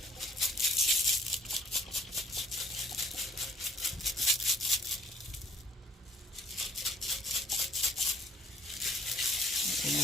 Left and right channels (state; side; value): normal; both; correlation 0.58